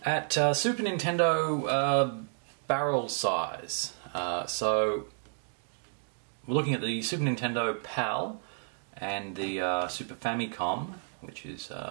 at Super Nintendo barrel size. So we're looking at the Super Nintendo PAL and the Super Famicom, which is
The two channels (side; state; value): left; silent; digital silence